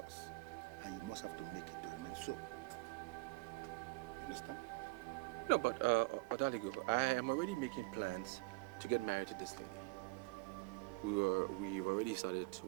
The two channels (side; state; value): left; quieter; 23.6 dB